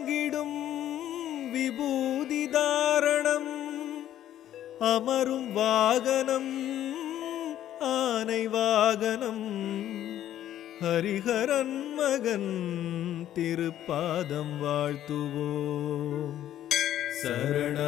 விபூதி தாரணம் அமரும் வாகனம் ஆனை வாகனம் ஹரிஹரன் மகன் திருப்பாதம் வாழ்த்துவோம்.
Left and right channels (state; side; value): quieter; right; 11.8 dB